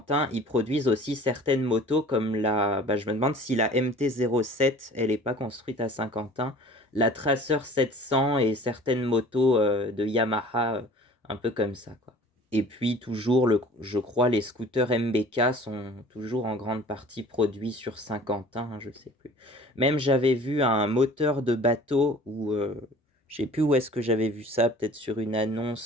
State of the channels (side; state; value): both; normal; correlation 0.47